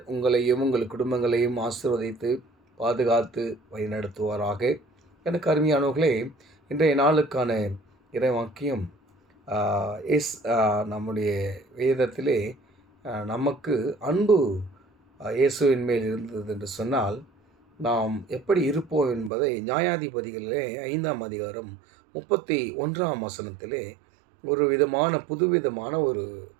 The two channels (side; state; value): left; drops out; at 19.3 s